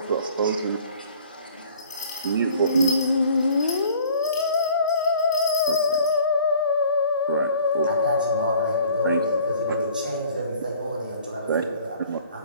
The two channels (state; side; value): inverted; both; correlation -0.52